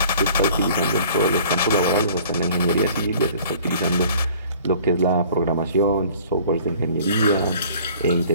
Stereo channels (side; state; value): both; inverted; correlation -0.52